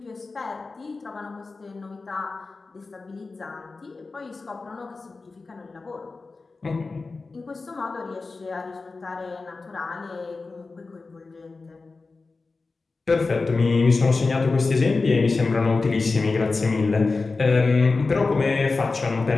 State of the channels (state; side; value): quieter; right; 3.9 dB